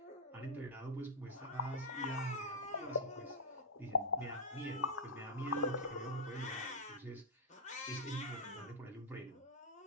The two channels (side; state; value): both; normal; correlation -0.06